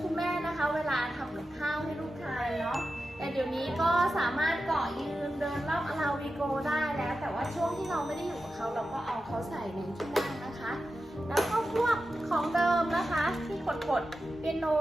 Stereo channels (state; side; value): normal; both; correlation 0.91